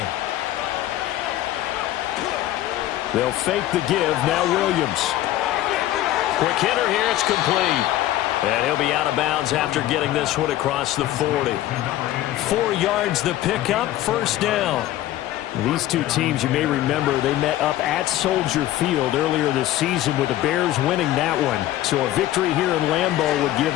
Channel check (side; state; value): right; quieter; 14.2 dB